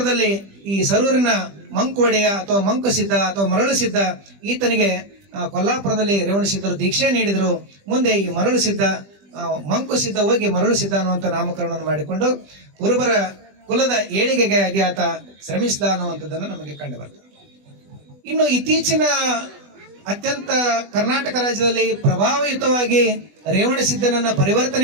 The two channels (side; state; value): left; late; 20 ms